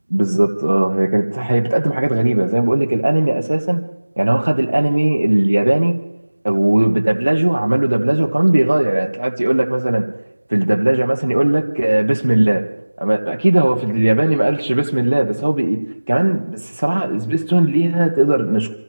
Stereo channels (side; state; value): both; inverted; correlation -1.00